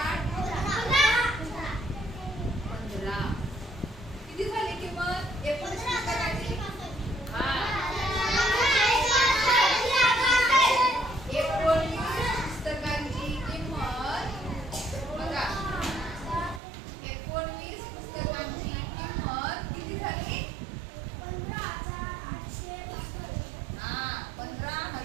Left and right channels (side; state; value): left; drops out; at 16.6 s